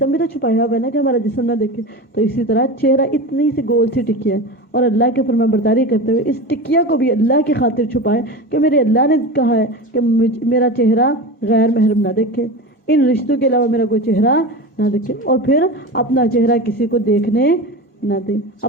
بھی تو چھپایا ہوا ہے نا کہ ہمارا جسم نہ دیکھے. تو اسی طرح چہرہ اتنی سی گول سی ٹکیا ہے اور اللہ کے فرمان برداری کرتے ہوئے اس ٹکیا کو بھی اللہ کی خاطر چھپائے کہ میرے اللہ نے کہا ہے کہ میرا چہرہ غیر محرم نہ دیکھے، ان رشتوں کے علاوہ میرا کوئی چہرہ نہ دیکھے. اور پھر اپنا چہرہ کسی کو دیکھنے نہ دے،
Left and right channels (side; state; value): both; normal; correlation 0.27